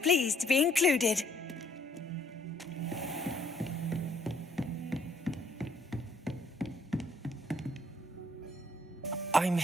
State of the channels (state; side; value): normal; both; correlation 0.65